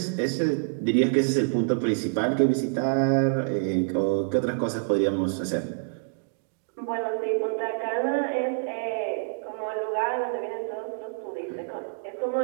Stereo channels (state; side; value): silent; left; 60 dB below the other